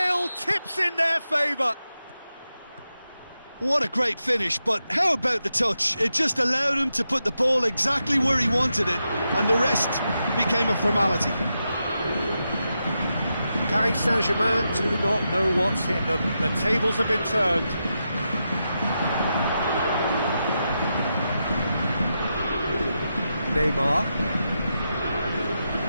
tips in their favour. What a great finish, but how about the touch? It just allowed him to put the ball exactly where he wanted it, and the rest became a formality. Paris Saint-Germain do not know what's hit them. The tables have been turned. Neymar.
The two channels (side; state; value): both; inverted; correlation -0.87